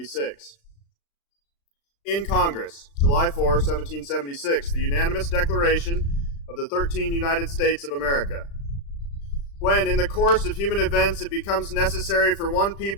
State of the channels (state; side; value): late; right; 36 ms